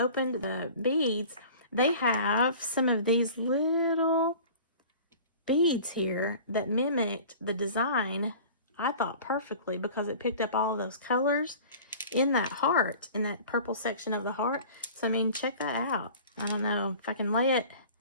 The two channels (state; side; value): inverted; both; correlation -0.42